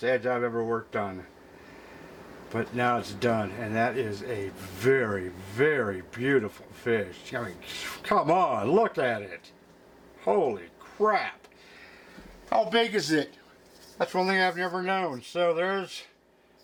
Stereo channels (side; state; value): both; identical; correlation 1.00